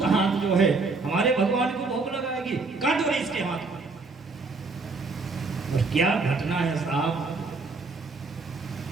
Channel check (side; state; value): left; quieter; 4.0 dB